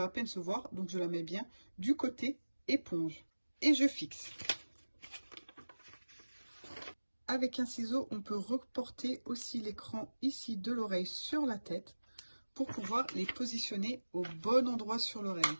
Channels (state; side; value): inverted; both; correlation -1.00